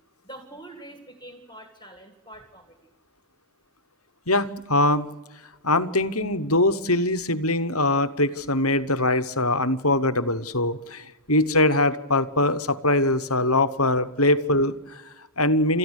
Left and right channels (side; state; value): both; normal; correlation -0.19